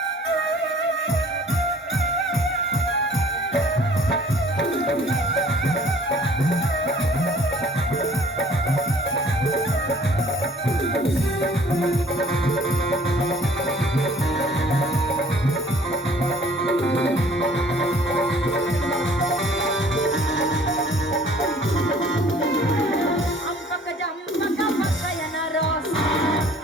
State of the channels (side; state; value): both; normal; correlation 0.54